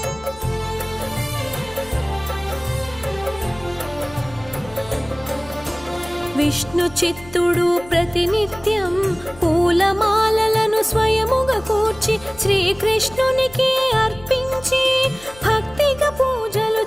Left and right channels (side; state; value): left; noise; hum, 20 dB below the sound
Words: విష్ణు చిత్తుడు ప్రతినిత్యం పూలమాలలను స్వయముగా కూర్చి శ్రీకృష్ణునికి అర్పించి భక్తిగా పూజలు